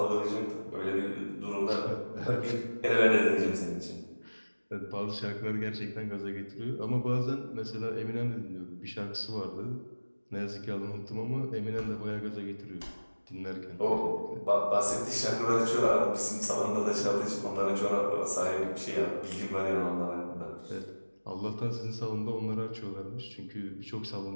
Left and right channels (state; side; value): inverted; both; correlation -1.00